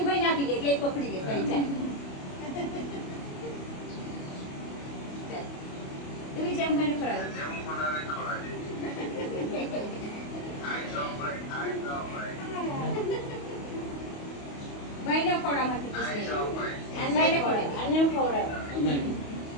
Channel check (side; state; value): right; late; 28 ms